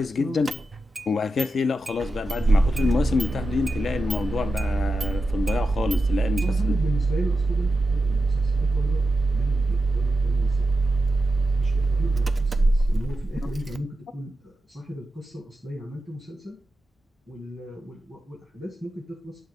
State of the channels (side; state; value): both; normal; correlation 0.90